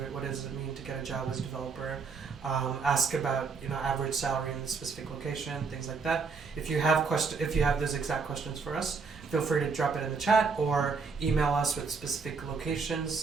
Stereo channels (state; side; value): quieter; left; 5.0 dB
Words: What does it mean to get a job as a developer? Ask about average salary in the specific location, things like that. If you have those exact questions for us, feel free to drop it in the chat or email us with specific